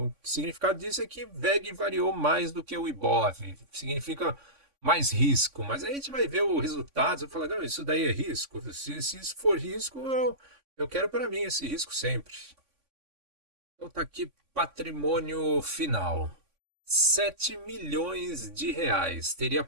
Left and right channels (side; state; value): left; late; 3.5 ms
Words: O significado disso é que VEG variou mais do que o IBOV. Significa mais risco. Mas aí a gente vai ver o resultado e falar, não, isso daí é risco. Se isso for risco, eu quero para mim esse risco sempre. Então tá aqui patrimônio final. 7 milhões de reais. Teria